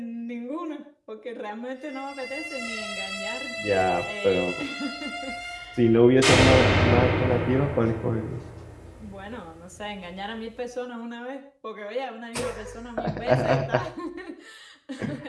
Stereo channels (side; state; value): both; identical; correlation 1.00